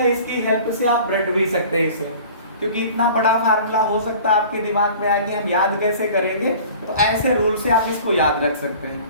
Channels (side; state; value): both; inverted; correlation -0.45